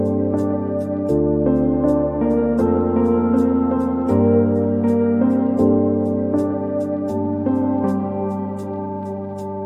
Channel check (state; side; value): identical; both; correlation 1.00